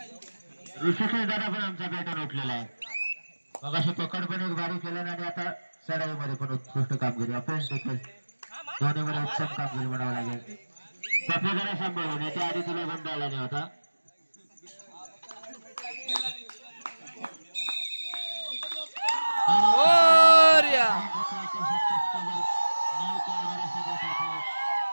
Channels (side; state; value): both; inverted; correlation -1.00